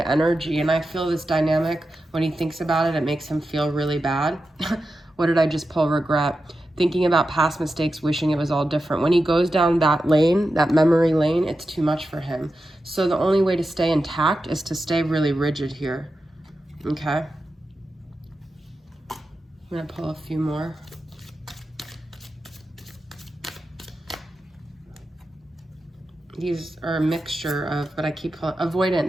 energy, and I feel this dynamic, when he thinks about it, it makes him feel really bad. What did I just pull? Regret. Thinking about past mistakes, wishing it was all different. When he goes down that lane, that memory lane, it's too much for him. So the only way to stay intact is to stay really rigid here. Okay? I'm going to pull a few more. These are a mixture of, but I keep pulling, avoidant.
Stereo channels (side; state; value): both; normal; correlation 0.90